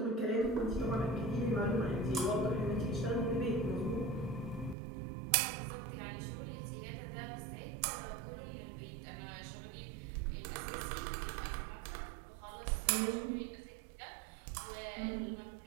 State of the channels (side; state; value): left; drops out; at 4.8 s